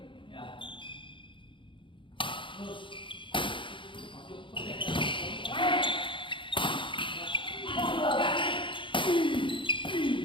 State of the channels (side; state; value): right; late; 0.24 ms